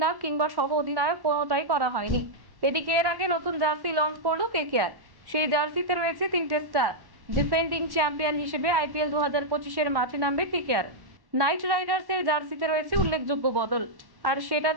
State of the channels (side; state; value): left; late; 1.1 ms